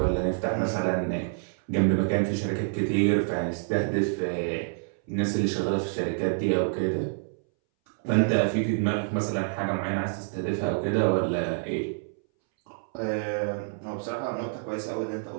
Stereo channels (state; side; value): silent; left; 60 dB below the other